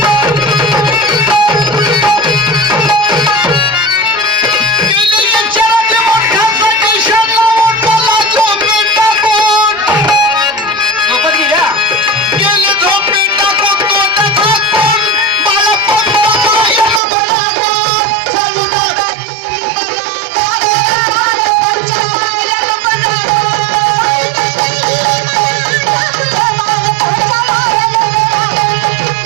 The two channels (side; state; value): left; drops out; at 17.0 s